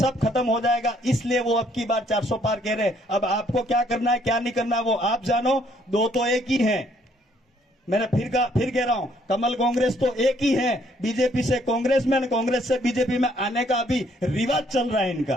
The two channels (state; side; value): normal; both; correlation 0.66